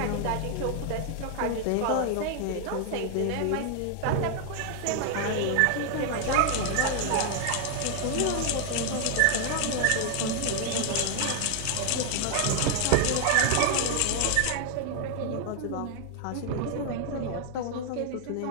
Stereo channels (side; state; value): both; different; correlation 0.00